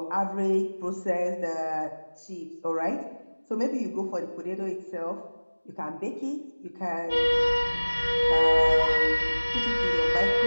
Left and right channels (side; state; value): both; inverted; correlation -1.00